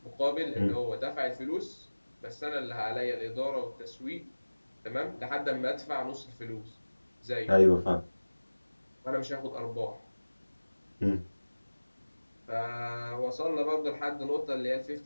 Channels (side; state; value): both; inverted; correlation -1.00